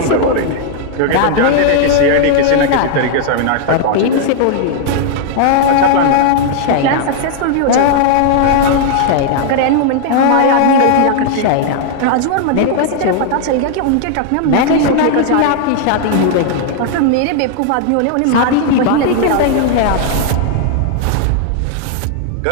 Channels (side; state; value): both; different; correlation 0.00